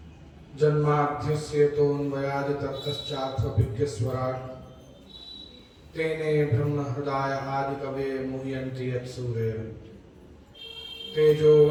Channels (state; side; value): identical; both; correlation 1.00